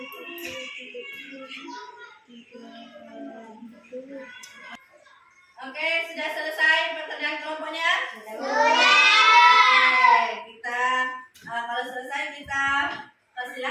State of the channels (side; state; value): both; identical; correlation 1.00